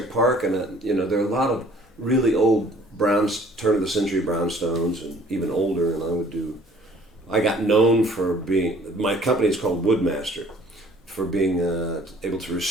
Park, and there are a lot of really old turn of the century brownstones and even older, and I got known for my company is called Woodmaster, for being able to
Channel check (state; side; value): normal; both; correlation 0.55